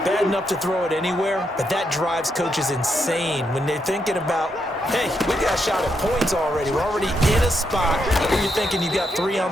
Bad enough to throw it anywhere, but that drives coaches insane when they're thinking about, hey, we got a shot at points already. We're already in a spot where you're thinking you got 3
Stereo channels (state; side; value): normal; both; correlation 0.80